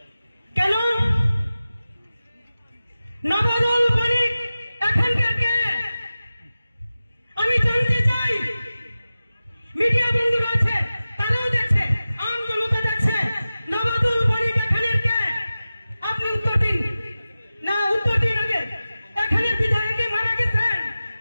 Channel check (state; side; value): inverted; both; correlation -0.96